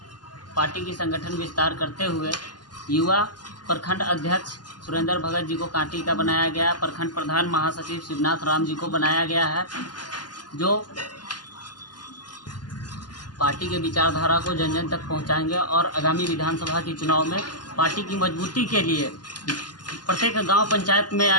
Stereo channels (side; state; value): right; late; 0.70 ms